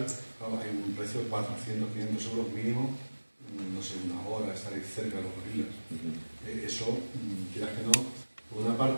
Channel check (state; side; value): inverted; both; correlation -1.00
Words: Claro, hay un precio de 400, 500 euros mínimo, no sé, una hora estar ahí cerca de los gorilas. Eso, quieras que no, por una